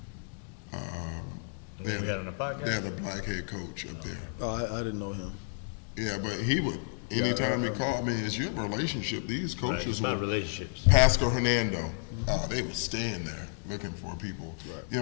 They had a black head coach up there. Oh, I didn't know him. Yeah, but he would, anytime he called me, it's your relationship. These coaches were relationships. Pascal Hernando, they would stand there looking for people.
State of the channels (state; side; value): silent; right; digital silence